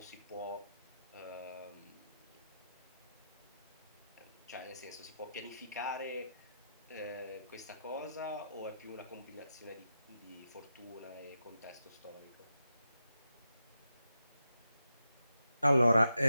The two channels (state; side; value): inverted; both; correlation -0.87